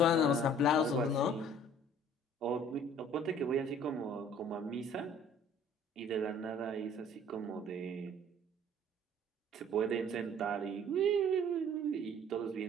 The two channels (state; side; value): normal; both; correlation 0.53